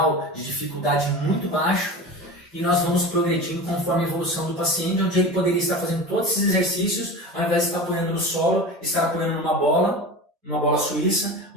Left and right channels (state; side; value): normal; both; correlation 0.31